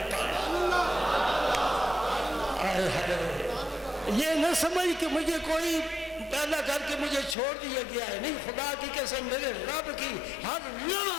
پالا. یہ نہ سمجھ کہ مجھے کوئی پیدا کر کے مجھے چھوڑ دیا گیا ہے, نہیں. خدا کی قسم میرے رب کی ہر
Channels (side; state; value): right; drops out; at 7.4 s